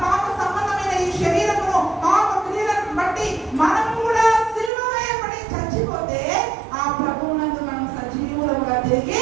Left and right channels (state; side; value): drops out; left; at 4.7 s